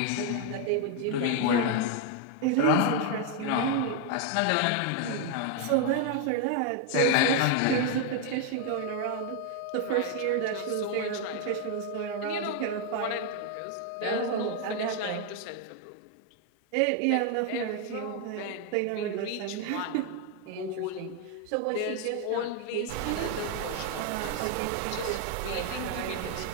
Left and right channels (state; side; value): different; both; correlation 0.01